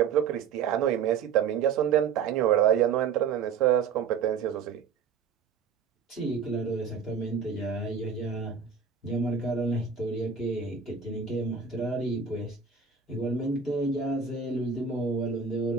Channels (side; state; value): left; quieter; 6.4 dB